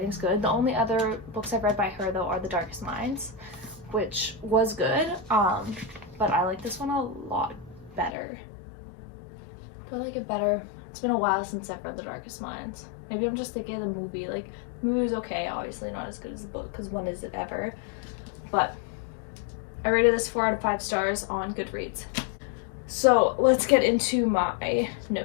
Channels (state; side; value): drops out; right; at 8.2 s